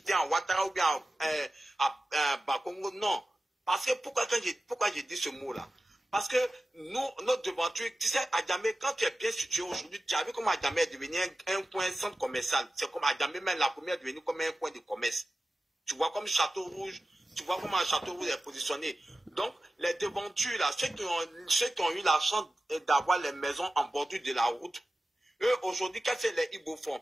à Ouattara ou bien à Bakongo, non. Parce que pourquoi j'ai dit ce mot-là? Parce que notre devanture, tu sais, Adjamé, quand tu es bien situé aujourd'hui, tu as vu comment Adjamé est devenu un coin centre commercial. C'est comme Adjamé, même la première est devenue comme un coin de commerce. Tu vois comme Château Rouge, tu vois comment Château Rouge est positionné. Donc, les devantures, là, ceux qui ont eu la chance d'avoir les maisons en bordure de la route, eux, aujourd'hui, qu'est-ce que les Ibo font?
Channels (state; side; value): normal; both; correlation 0.94